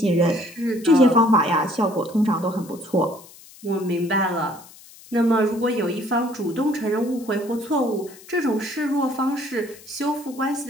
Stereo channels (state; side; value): noise; left; hiss, 21 dB below the sound